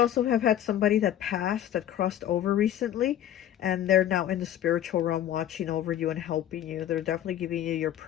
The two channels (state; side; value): quieter; right; 11.4 dB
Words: have had somebody that passed, that crossed over recently, and they're now in the spiritual realm watching over you and helping you. They're definitely giving you your